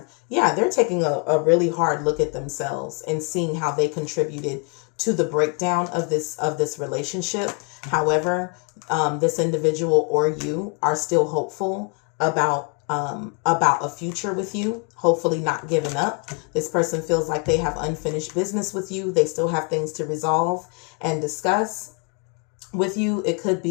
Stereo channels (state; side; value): quieter; right; 36.0 dB